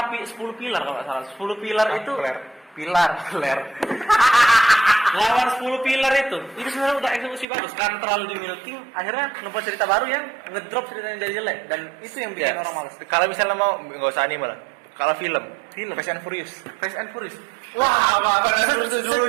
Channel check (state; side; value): drops out; left; at 7.5 s